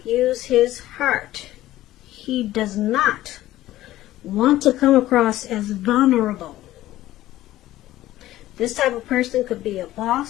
use his heart. He does not want to come across as vulnerable. This type of person could be a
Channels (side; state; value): right; quieter; 15.0 dB